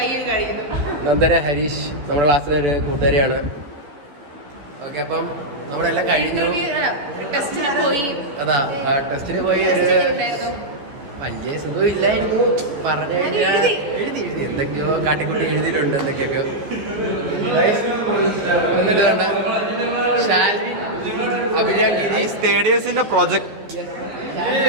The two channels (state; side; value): late; left; 14 ms